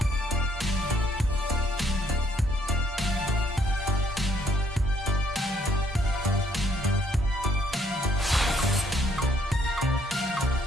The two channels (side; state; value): both; normal; correlation 0.67